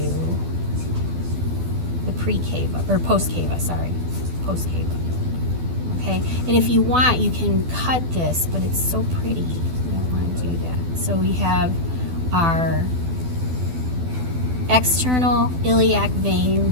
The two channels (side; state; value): left; late; 12 ms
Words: the pre-cava, or post-cava, sorry, post-cava. Okay, and if you want, you can cut this, but it's so pretty, you don't want to do that. So we have our external iliac